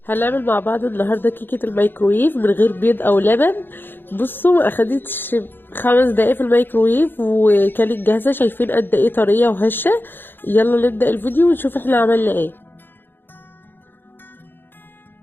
هنعمل مع بعض النهارده كيكه الميكرويف من غير بيض او لبن. بصوا ما اخدتش 5 دقايق في الميكرويف وكانت جاهزه. شايفين قد ايه طريه وهشه؟ يلا نبدا الفيديو ونشوف احنا عملنا ايه.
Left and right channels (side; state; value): right; late; 0.098 ms